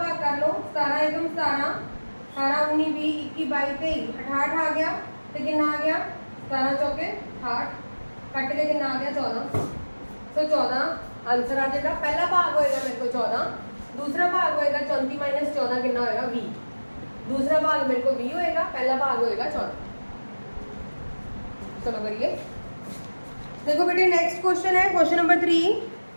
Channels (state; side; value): inverted; both; correlation -1.00